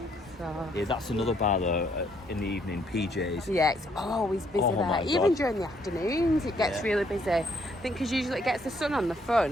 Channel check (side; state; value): both; normal; correlation 0.69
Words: So Yeah, that's another bar though in the evening, PJ's. yeah, it's always busy Oh my there. Even God. during the afternoons, it gets Yeah. really busy. I think because usually it gets the sun on the